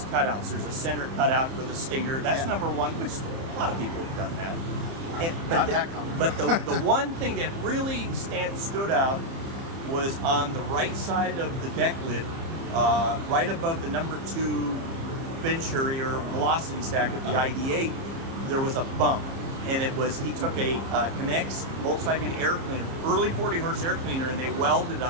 cutouts. There's a center cutout for the Stinger. That's number one, which a lot of people have done that. But the one thing that really stood out was on the right side of the deck lid, right above the number 2 Venturi or velocity stack of the ID8, there was a bump. And it was, he took a Connects Volkswagen air cleaner, early 40 horse air cleaner, and they welded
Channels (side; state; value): left; late; 30 ms